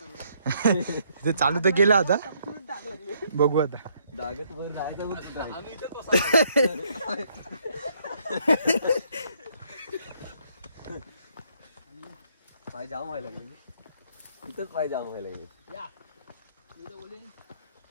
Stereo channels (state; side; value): inverted; both; correlation -0.69